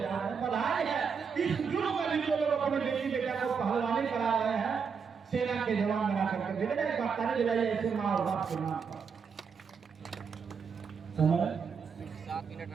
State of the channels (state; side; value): quieter; left; 6.1 dB